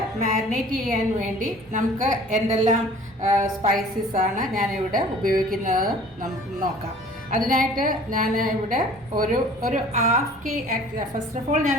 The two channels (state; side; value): normal; both; correlation 0.49